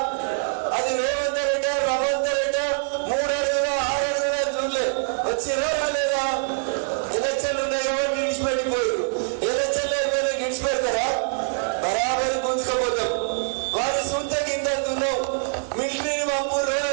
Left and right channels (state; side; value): silent; left; digital silence